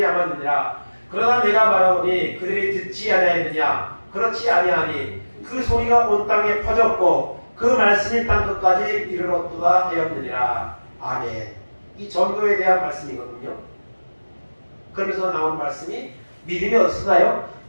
그러나 내가 말하오니 그들이 듣지 아니하였느냐. 그렇지 아니하니 그 소리가 온 땅에 퍼졌고 그 말씀이 땅 끝까지 이르렀도다 하였느니라. 아멘. 이 전도에 대한 말씀이거든요. 그러면서 나오는 말씀이 믿음이 어디서 나요?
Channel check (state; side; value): inverted; both; correlation -1.00